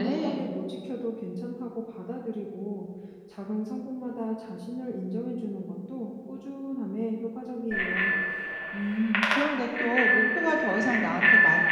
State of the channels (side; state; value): both; identical; correlation 1.00